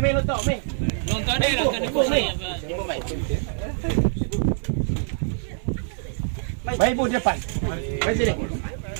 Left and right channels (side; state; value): left; silent; 62 dB below the other